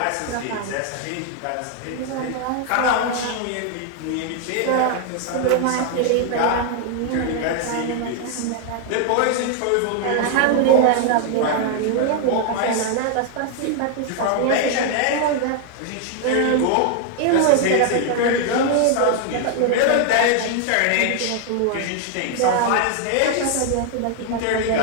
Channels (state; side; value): different; both; correlation 0.00